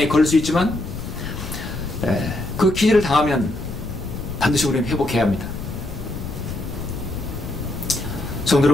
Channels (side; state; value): left; noise; rumble, 8 dB below the sound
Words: 걸릴 수 있지만 그 기질을 당하면 반드시 우리는 회복해야 합니다. 성도